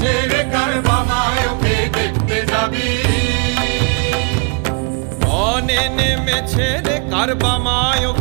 রে কারবামায়কে দেখতে যাবি। রনে নেমেছে রে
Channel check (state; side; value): quieter; left; 35.1 dB